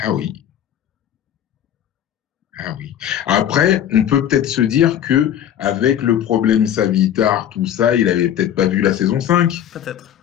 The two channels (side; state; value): right; quieter; 10.3 dB